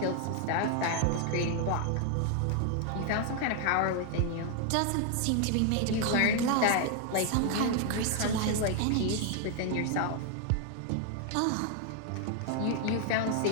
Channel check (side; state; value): both; different; correlation 0.00